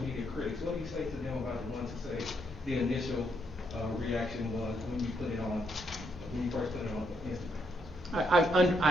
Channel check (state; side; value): normal; both; correlation 0.76